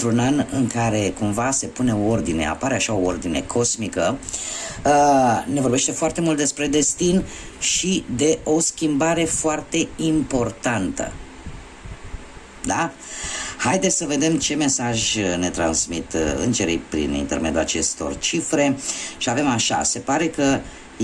an în care cumva se pune o ordine, apare așa o ordine cosmică, ne vorbește foarte mult despre destin și de o schimbare foarte importantă. Da? Haideți să vedem ce mesaj ne transmit îngerii prin intermediul acestor cifre și avem așa, se pare că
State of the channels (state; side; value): identical; both; correlation 1.00